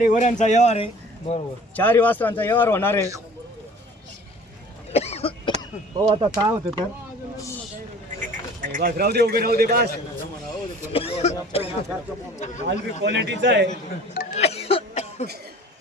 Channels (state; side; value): normal; both; correlation 0.47